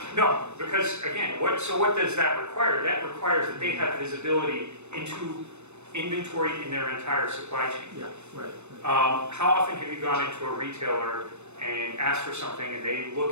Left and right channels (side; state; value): left; late; 0.82 ms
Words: No, because again, what does that require? That requires that they have visibility into inventory in their entire supply chain. Yeah, right. How often have you gone into a retailer and asked for something and they